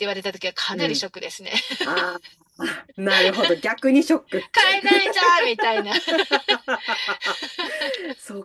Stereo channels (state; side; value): identical; both; correlation 1.00